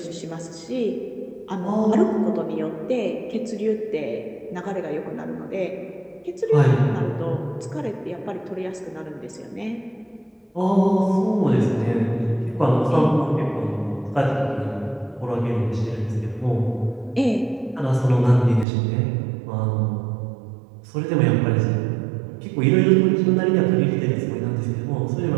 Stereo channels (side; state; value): left; drops out; at 18.7 s